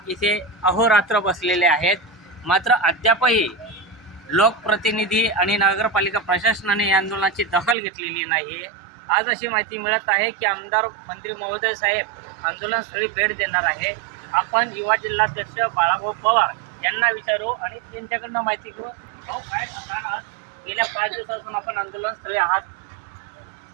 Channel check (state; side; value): drops out; left; at 7.8 s